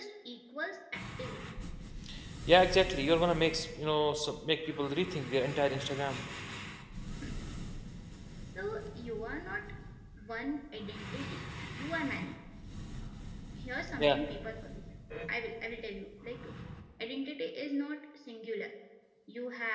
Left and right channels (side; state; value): both; identical; correlation 1.00